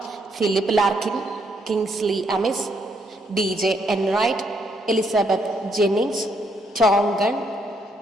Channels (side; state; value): both; normal; correlation 0.73